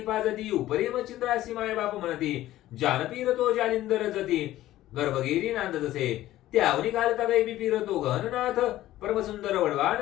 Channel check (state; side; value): quieter; right; 14.7 dB